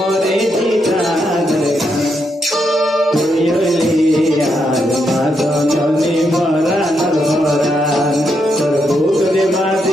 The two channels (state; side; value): normal; both; correlation 0.80